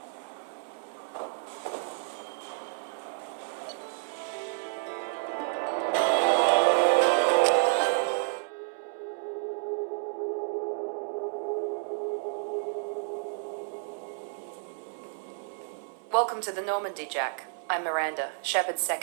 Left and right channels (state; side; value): silent; left; digital silence